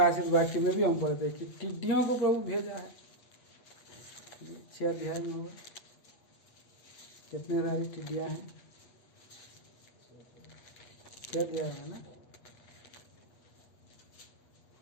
वाक्य में भी हम पढ़ते हैं कि टिड्डियों को प्रभु भेजा है। 6 अध्याय में होगा, कितने सारी टिड्डियां हैं? 6 अध्याय है ना।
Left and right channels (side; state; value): right; late; 8.3 ms